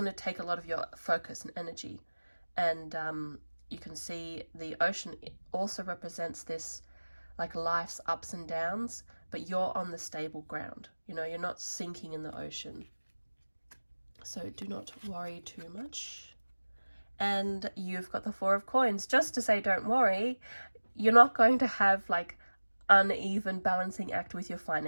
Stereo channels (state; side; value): inverted; both; correlation -1.00